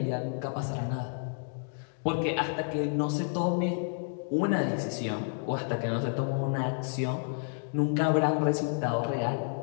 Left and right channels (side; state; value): right; silent; digital silence